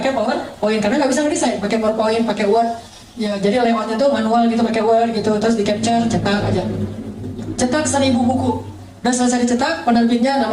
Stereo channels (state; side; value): identical; both; correlation 1.00